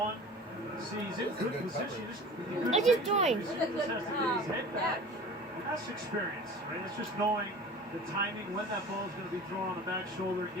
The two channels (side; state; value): both; normal; correlation 0.39